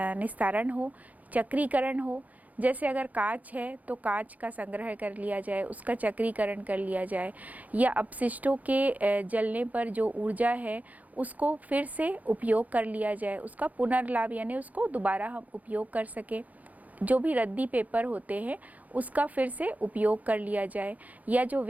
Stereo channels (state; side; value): late; left; 0.077 ms